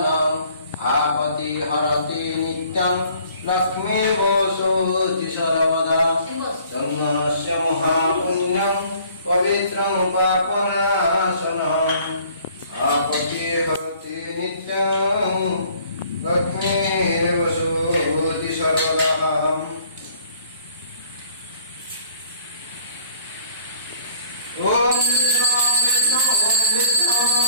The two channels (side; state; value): both; inverted; correlation -0.56